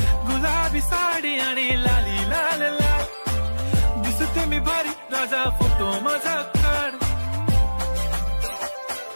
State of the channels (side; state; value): both; inverted; correlation -1.00